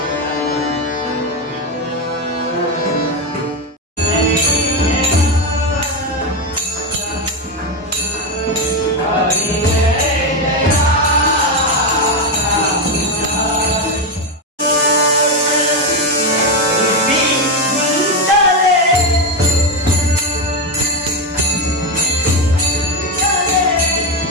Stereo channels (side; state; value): both; normal; correlation 0.10